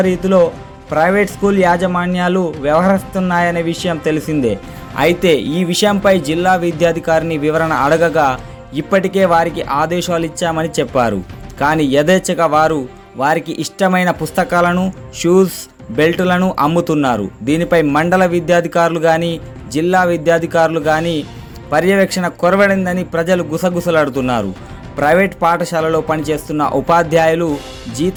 ప్రైవేట్ స్కూల్ యాజమాన్యాలు వ్యవహరిస్తున్నాయనే విషయం తెలిసిందే. అయితే ఈ విషయంపై జిల్లా విద్యాధికారిని వివరణ అడగగా ఇప్పటికే వారికి ఆదేశాలు ఇచ్చామని చెప్పారు. కానీ యథేచ్ఛగా వారికి ఇష్టమైన పుస్తకాలను, షూస్, బెల్టులను అమ్ముతున్నారు. దీనిపై మండల విద్యాధికారులు కానీ జిల్లా విద్యాధికారులు కానీ పర్యవేక్షణ కొరవడిందని ప్రజలు గుసగుసలాడుతున్నారు. ప్రైవేట్ పాఠశాలలో పనిచేస్తున్న ఉపాధ్యాయులు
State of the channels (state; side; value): identical; both; correlation 1.00